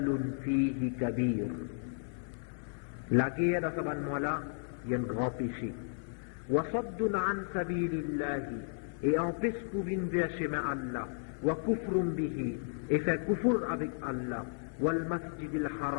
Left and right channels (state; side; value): silent; right; 55 dB below the other